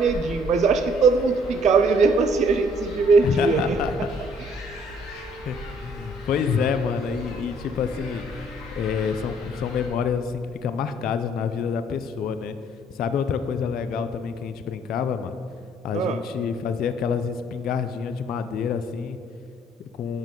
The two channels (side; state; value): both; normal; correlation 0.61